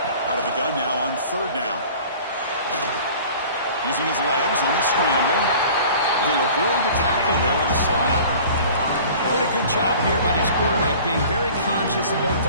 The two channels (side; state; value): both; inverted; correlation -0.45